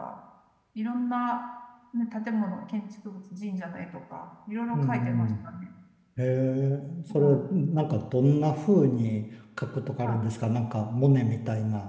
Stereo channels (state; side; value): identical; both; correlation 1.00